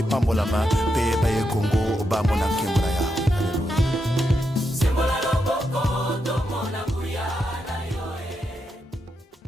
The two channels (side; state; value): both; normal; correlation 0.84